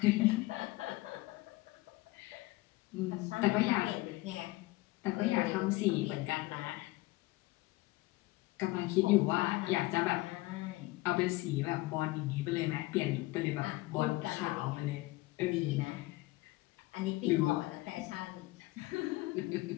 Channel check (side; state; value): right; quieter; 20.3 dB